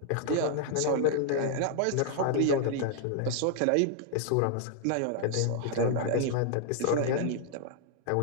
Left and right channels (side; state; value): both; different; correlation 0.00